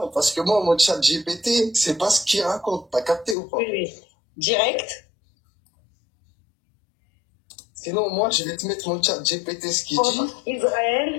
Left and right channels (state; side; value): drops out; right; at 3.4 s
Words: parce que moi, mon chat GPT, c'est pas ce qu'il raconte. T'as capté ou pas? Oui. Direct. Sinon, moi, je vais te mettre mon chat GPT, ce qu'il dit.